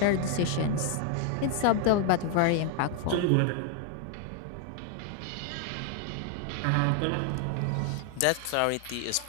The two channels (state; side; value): different; both; correlation 0.00